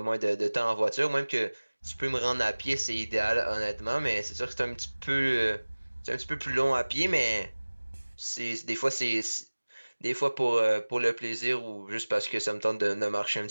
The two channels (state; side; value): inverted; both; correlation -1.00